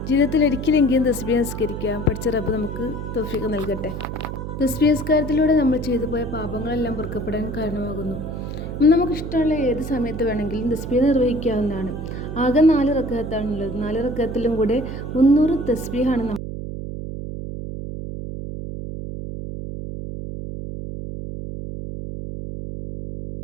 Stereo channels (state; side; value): noise; right; hum, 6 dB below the sound